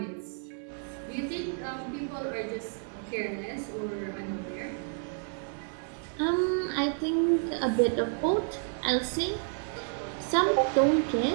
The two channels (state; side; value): silent; left; 56 dB below the other